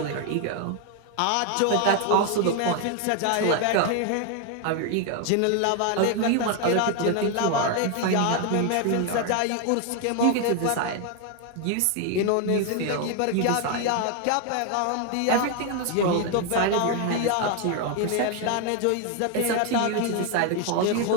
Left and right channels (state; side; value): different; both; correlation 0.01